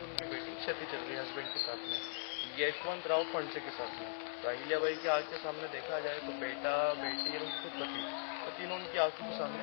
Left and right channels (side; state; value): right; silent; 51 dB below the other